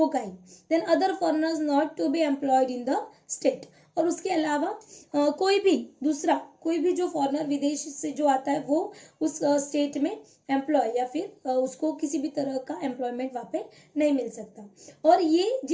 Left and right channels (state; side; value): identical; both; correlation 1.00